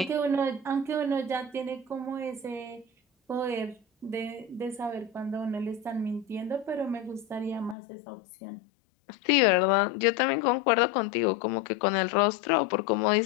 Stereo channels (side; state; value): right; drops out; at 7.8 s